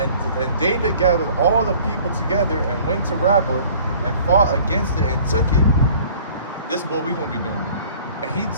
David gathered all the people together and went to Rabbah and fought against it and took it. This is what we're going to be doing. And he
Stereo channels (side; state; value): both; inverted; correlation -0.50